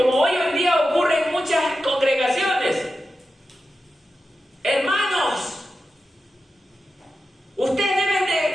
hoy en día ocurre en muchas congregaciones, hermanos, ustedes deben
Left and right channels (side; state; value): both; normal; correlation 0.91